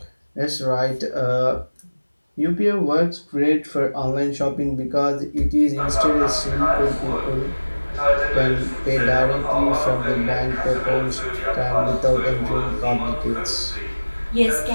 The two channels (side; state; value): both; inverted; correlation -1.00